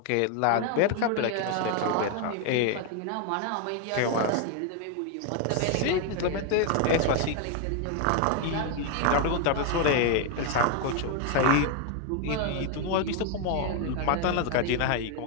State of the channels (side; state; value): both; different; correlation 0.01